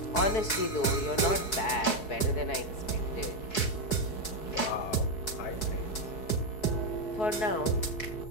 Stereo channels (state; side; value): late; right; 4.7 ms